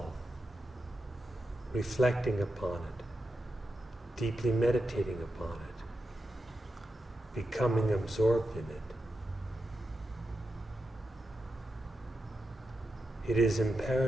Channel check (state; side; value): normal; both; correlation 0.88